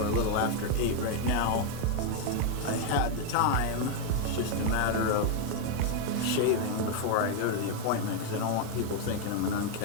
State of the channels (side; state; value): both; different; correlation 0.01